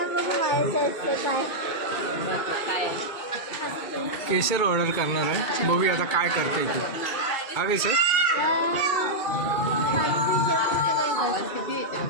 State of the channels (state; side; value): late; right; 2.3 ms